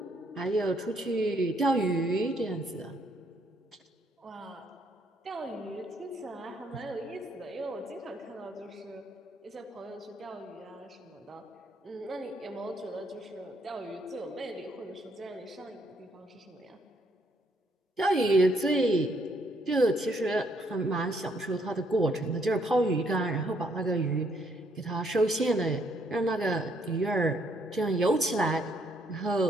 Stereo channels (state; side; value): normal; both; correlation 0.70